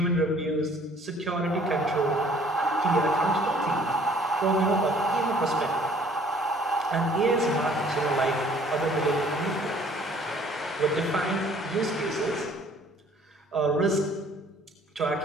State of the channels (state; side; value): normal; both; correlation 0.57